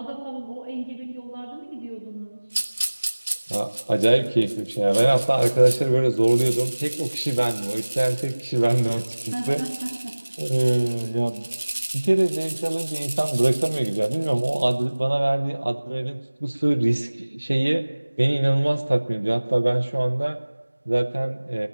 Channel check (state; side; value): inverted; both; correlation -1.00